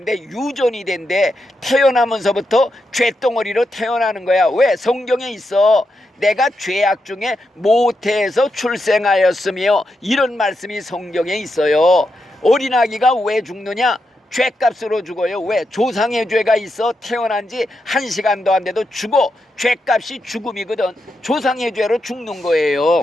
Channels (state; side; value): normal; both; correlation 0.85